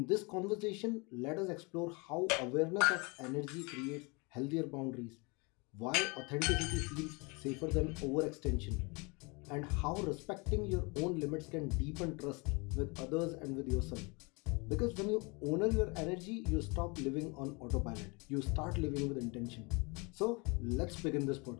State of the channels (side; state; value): right; quieter; 29.2 dB